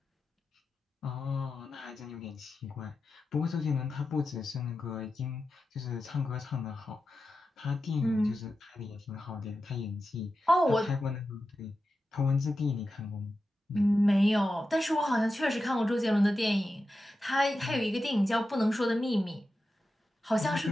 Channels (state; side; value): normal; both; correlation 0.91